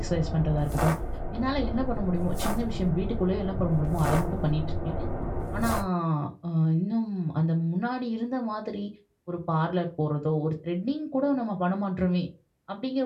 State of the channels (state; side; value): identical; both; correlation 1.00